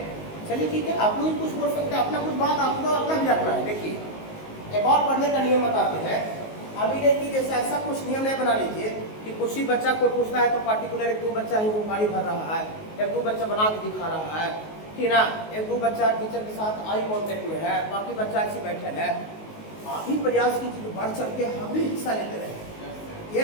चलिए ठीक है, आप लोग कुछ बोल सकते हैं, अपना कुछ बात आप लोग अपना भी रखना है। देखिए एक और पढ़ने का नियम बताते हैं, अभी नहीं कि जैसे ऐसा कुछ नियम नहीं बना लीजिए कि कुछ ही बच्चा को पूछता है तो पार्टिकुलर 1-2 बच्चा ही वो गाड़ी भर रहा है, 1-2 बच्चा बना के दिखा रहा है, ठीक ना, 1-2 बच्चा टीचर के साथ आई कांटेक्ट में है, बाकी बच्चा ऐसे बैठे है। आप ही प्रयास कीजिए बढ़ चढ़ के हम भी हिस्सा लेते रहे।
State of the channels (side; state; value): right; late; 19 ms